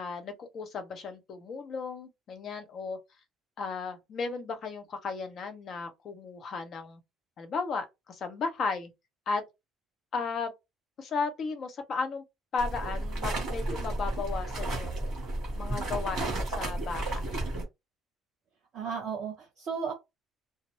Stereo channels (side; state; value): both; normal; correlation 0.71